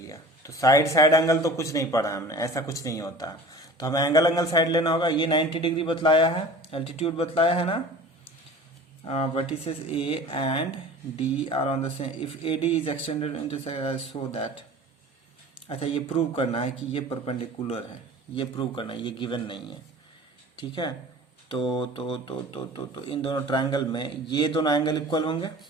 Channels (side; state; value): both; normal; correlation 0.41